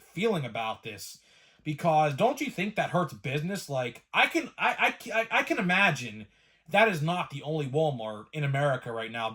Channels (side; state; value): both; identical; correlation 1.00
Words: about this? Because don't you think that hurts business? Like, I can imagine that is not the only Walmart in America right now